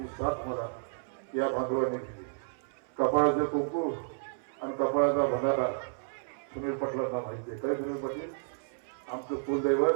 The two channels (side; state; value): left; silent; 57 dB below the other